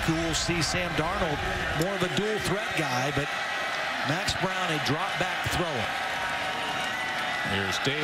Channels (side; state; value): both; identical; correlation 1.00